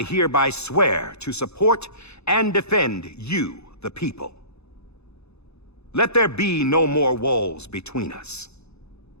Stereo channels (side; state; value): right; late; 0.80 ms